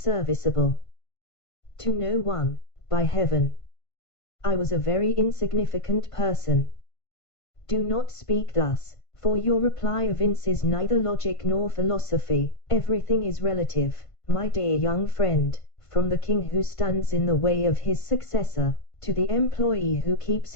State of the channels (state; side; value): late; right; 1.5 ms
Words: To no one, by heaven. I was a very insignificant person. Do not speak thus, for your reply evinces neither logic nor philosophy. Everything is relative, my dear young friend, from the king who stands in the way of his successor, to the employee who keeps